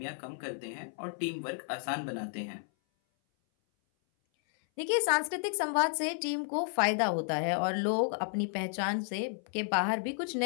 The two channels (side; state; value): right; silent; 56 dB below the other